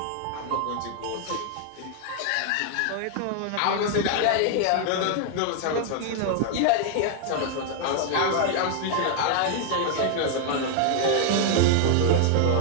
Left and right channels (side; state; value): both; different; correlation 0.00